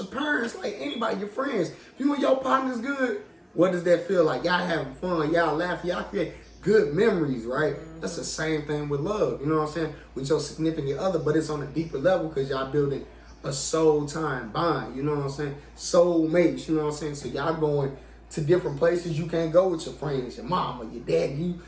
parents, like anybody, your friends. If you and your partner's good, what does that feel like? Y'all having fun. Y'all laughing. Y'all create good memories, right? That's the same thing with love. You know what I'm saying? With your significant other, but it's on a deeper level because y'all building a soul time bond, you know what I'm saying? Soul mates, you know what I'm saying? So y'all going to different places you can't go with your friends, your mama, your dad, you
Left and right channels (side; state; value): both; identical; correlation 1.00